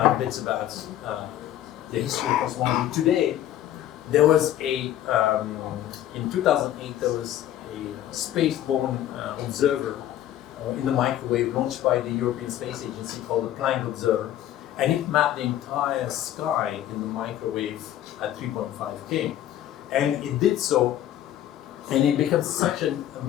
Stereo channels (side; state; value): right; quieter; 12.2 dB